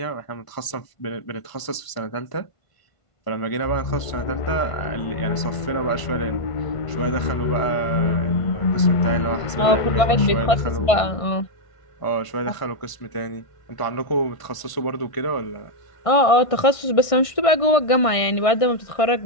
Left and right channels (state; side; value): late; right; 1.5 ms